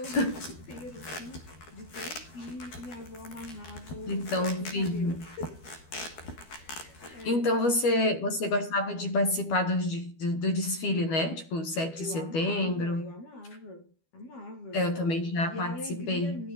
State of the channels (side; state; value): right; late; 12 ms